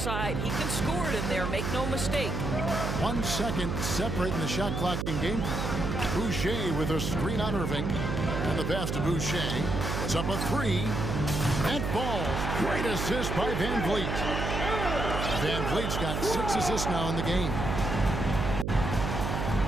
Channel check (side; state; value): right; noise; hum, 2 dB below the sound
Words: He can score it in there, make no mistake. 1 second separating the shot clock in game. Boucher with a screen on Irving. And the pass to Boucher was up a 3. And falls. Great assist by Van Vliet. Van Vliet's got 6 assists now in the game.